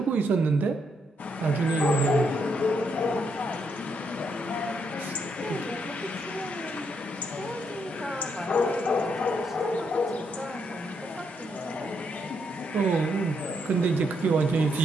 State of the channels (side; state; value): both; normal; correlation 0.77